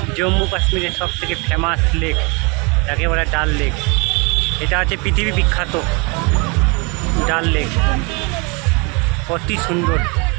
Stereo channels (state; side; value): quieter; left; 30.5 dB